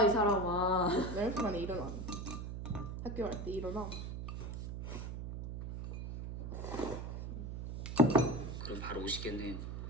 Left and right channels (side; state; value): right; noise; hum, 6 dB below the sound